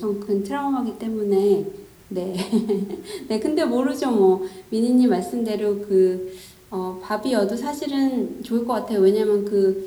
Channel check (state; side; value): identical; both; correlation 1.00